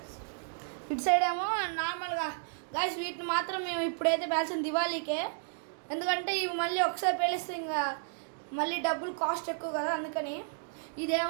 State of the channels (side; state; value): left; silent; digital silence